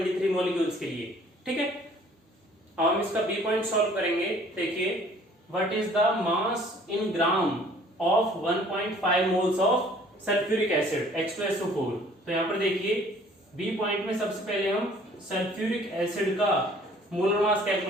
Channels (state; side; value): normal; both; correlation 0.55